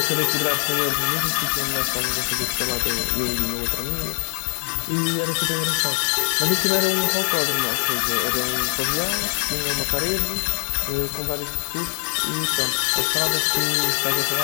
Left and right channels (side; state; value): right; quieter; 37.0 dB